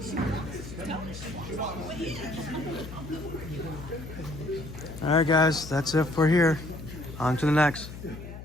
All right, guys, that's it for here. On to the next.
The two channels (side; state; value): left; noise; hum, 12 dB below the sound